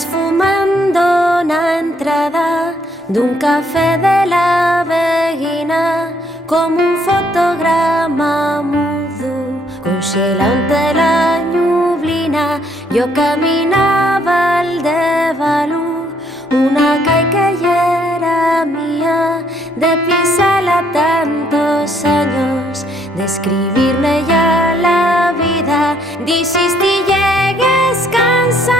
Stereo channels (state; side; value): normal; both; correlation 0.68